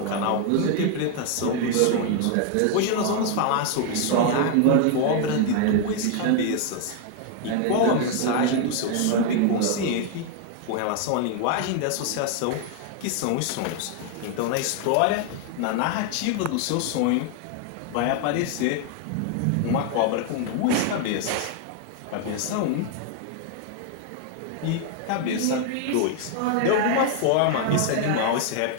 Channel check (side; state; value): both; different; correlation 0.00